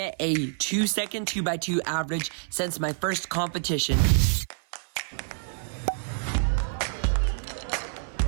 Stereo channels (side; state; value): left; silent; 60 dB below the other